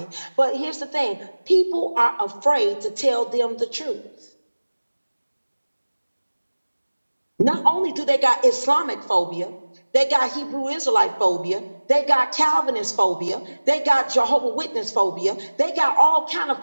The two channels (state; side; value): inverted; both; correlation -1.00